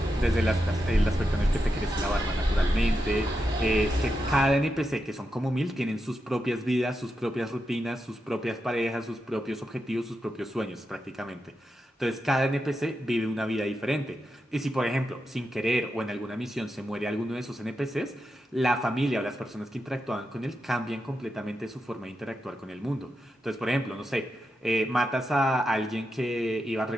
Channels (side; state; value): both; normal; correlation 0.87